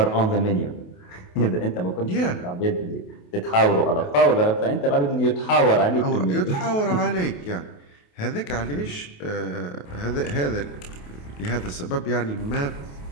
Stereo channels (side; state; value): right; late; 28 ms